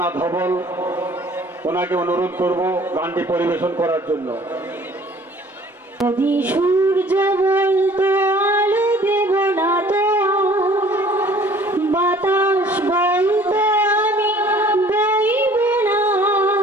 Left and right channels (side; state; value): both; normal; correlation 0.53